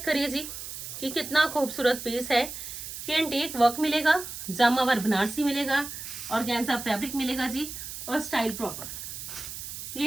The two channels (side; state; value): right; noise; hiss, 9 dB below the sound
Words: करिए जी कि कितना खूबसूरत पीस है। कि एंटीक वर्क मिलेगा, जामा वर्क बनारसी मिलेगा, ऑर्गेन्जा फैब्रिक मिलेगा जी, और स्टाइल प्रॉपर।